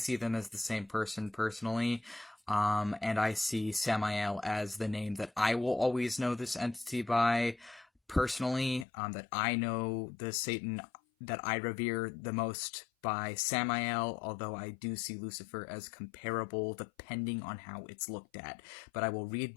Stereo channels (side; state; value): right; drops out; at 8.8 s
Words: them as the same person personally. And I see Samael as the name that I will always know this entity by. Personally, that I know the Satan that I revere the most by Samael, although I do see Lucifer as comparable depending on how it's looked at. But I will read